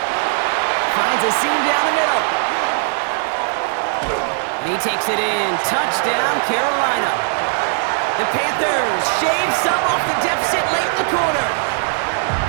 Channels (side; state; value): left; silent; 55 dB below the other